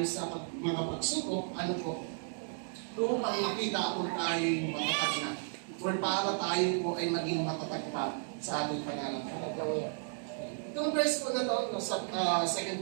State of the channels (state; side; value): silent; left; digital silence